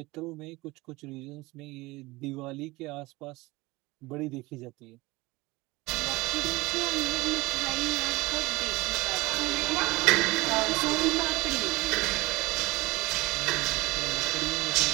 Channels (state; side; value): quieter; left; 21.4 dB